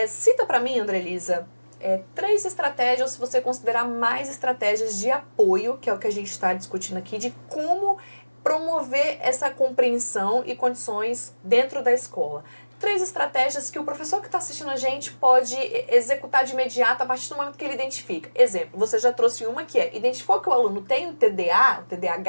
Cita para mim, Andrelisa, 3 estratégias, se você considerar mais estratégias de apoio, que é o que a gente está discutindo aqui, de como promover essa compreensão e condições dentro da escola. 3 estratégias que o professor que está assistindo a gente pode executar de imediato a partir do momento que ele identifica. Exemplo, você já trouxe uma que identificou que o aluno tem o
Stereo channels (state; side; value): inverted; both; correlation -1.00